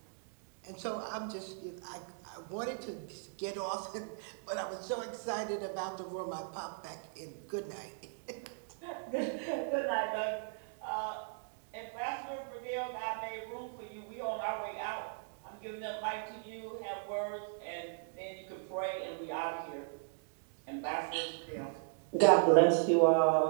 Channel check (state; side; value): silent; left; digital silence